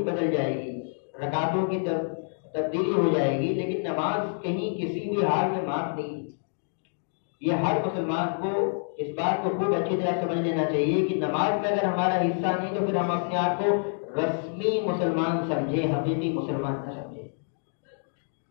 بدل جائے گی، رکعتوں کی تبدیلی ہو جائے گی، لیکن نماز کہیں کسی بھی حال میں معاف نہیں۔ یہ ہر مسلمان کو اس بات کو خوب اچھی طرح سمجھ لینا چاہیے کہ نماز میں اگر ہمارا حصہ نہیں تو پھر ہم اپنے آپ کو رسمی مسلمان سمجھیں، حقیقی مسلمان نہ سمجھیں،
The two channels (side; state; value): right; silent; digital silence